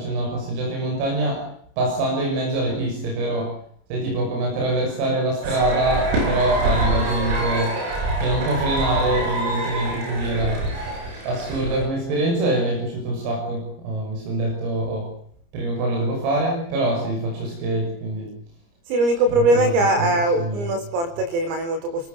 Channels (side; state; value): left; late; 29 ms